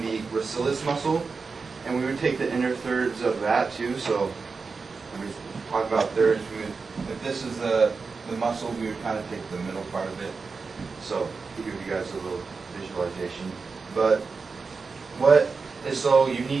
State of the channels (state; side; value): quieter; left; 4.7 dB